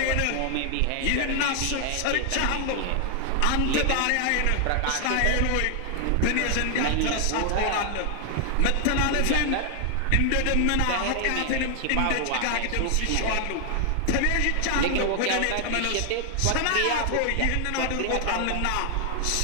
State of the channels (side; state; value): both; different; correlation 0.00